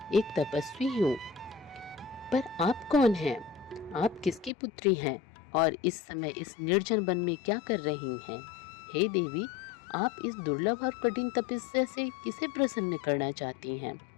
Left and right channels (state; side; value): drops out; right; at 4.5 s